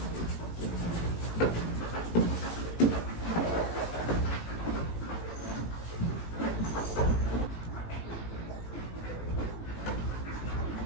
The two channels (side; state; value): right; late; 18 ms